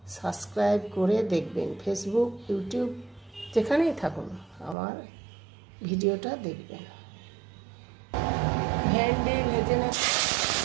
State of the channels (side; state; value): left; drops out; at 4.8 s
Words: সাবস্ক্রাইব করে দেখবেন। ফেসবুক, ইউটিউব যেখানেই থাকুন আমার ভিডিওটা দেখবেন। ভেন্ডি ভেজে নেব।